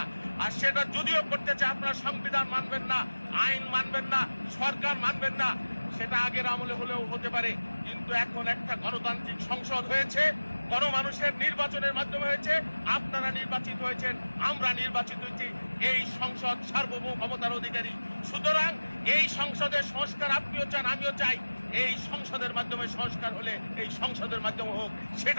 আর সেটা যদিও করতে চায়, আপনারা সংবিধান মানবেন না, আইন মানবেন না, সরকার মানবেন না, সেটা আগের আমলে হলেও হতে পারে, কিন্তু এখন একটা গণতান্ত্রিক সংসদ হয়েছে, গণমানুষের নির্বাচনের মাধ্যমে হয়েছে। আপনারা নির্বাচিত হয়েছেন, আমরা নির্বাচিত হয়েছি। এই সংসদ সার্বভৌম ক্ষমতার অধিকারী। সুতরাং এই সংসদের সংস্কার আপনিও চান, আমিও চাই। এই সংসদের মাধ্যমে সংস্কার হলে এই সংসদের মাধ্যমে হোক,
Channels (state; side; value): inverted; both; correlation -1.00